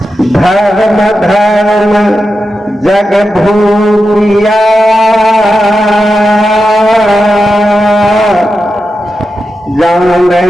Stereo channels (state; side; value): normal; both; correlation 0.89